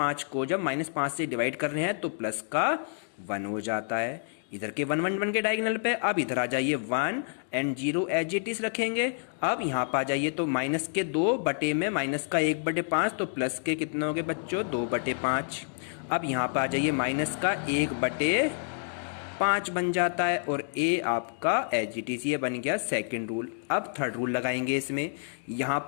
को जब -5 से डिवाइड कर रहे हैं तो प्लस का 1 हो जाता है। इधर के 1 1 1 के डायगोनल पे अब इधर आ जाइए 1 एंड 0 एज इट इज रखेंगे। अब यहाँ पर आ जाइए तो माइनस के 2 बटे में माइनस का 1/5 तो प्लस के कितने हो गए बच्चों 2/5। अब यहाँ पर आ जाइए माइनस का 1/5 बन जाता है, और ए आपका एज इट इज ये बन गया सेकंड रूल। अब थर्ड रूल लगाएंगे इसमें। यहाँ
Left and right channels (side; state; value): right; silent; digital silence